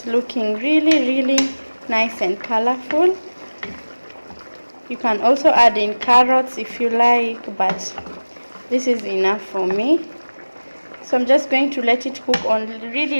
looking really nice and colorful. You can also add in carrots if you like, but this is enough for me. So I'm just going to let it cook on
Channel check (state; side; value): inverted; both; correlation -1.00